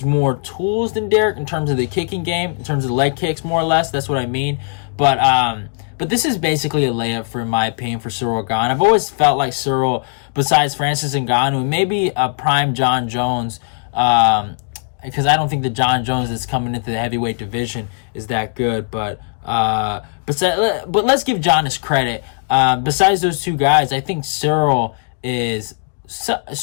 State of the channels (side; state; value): right; silent; digital silence